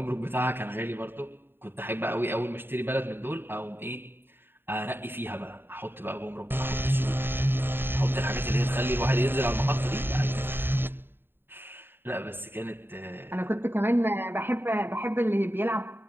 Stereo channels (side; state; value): left; late; 0.10 ms